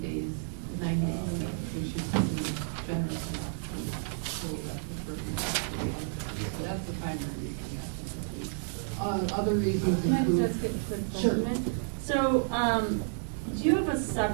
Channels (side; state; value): left; silent; 55 dB below the other